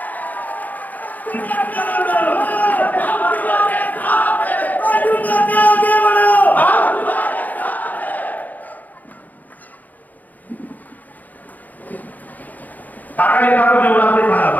काकाने काका निवडा ते सांगा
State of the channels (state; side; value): late; right; 0.081 ms